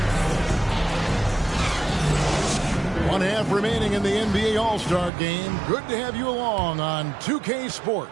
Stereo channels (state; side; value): drops out; left; at 5.1 s